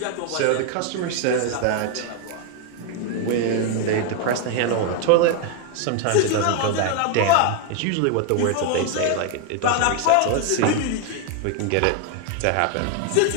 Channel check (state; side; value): different; both; correlation 0.01